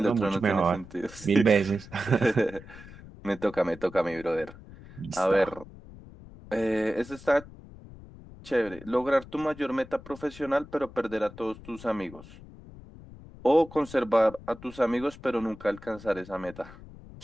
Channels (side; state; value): left; noise; rumble, 18 dB below the sound